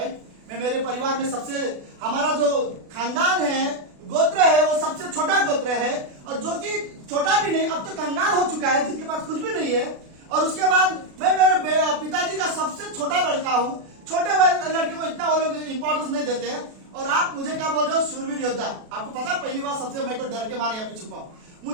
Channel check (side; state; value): left; late; 36 ms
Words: मैं मेरे परिवार में सबसे, हमारा जो खानदान है, गोत्र है, वो सबसे छोटा गोत्र है, और जो कि छोटा भी नहीं, अब तो कंगाल हो चुका है, जिसके पास कुछ भी नहीं है। और उसके बाद मैं मेरे पिताजी का सबसे छोटा लड़का हूँ। छोटे लड़के को इतना वो लोग इंपॉर्टेंस नहीं देते हैं, और आप मुझे क्या बोल रहे हो, शूरवीर योद्धा। आपको पता, पहली बार सबसे मैं तो डर के मारे यहाँ पे छुपा हूँ।